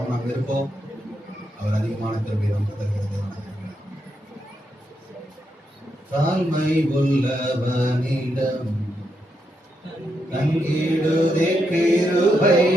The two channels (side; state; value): both; normal; correlation 0.82